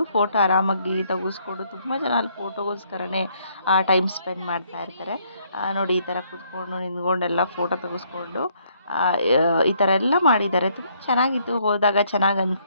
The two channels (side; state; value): both; inverted; correlation -0.68